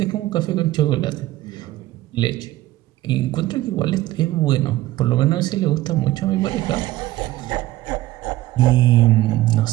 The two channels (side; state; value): left; quieter; 16.3 dB